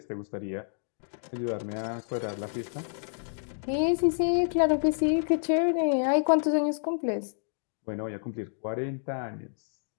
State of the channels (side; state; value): right; silent; digital silence